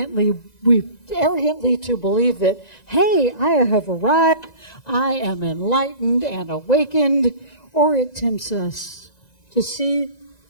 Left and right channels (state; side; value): late; right; 1.9 ms